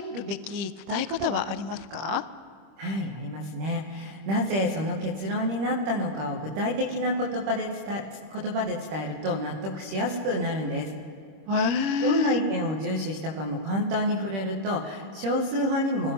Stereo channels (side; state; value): left; late; 26 ms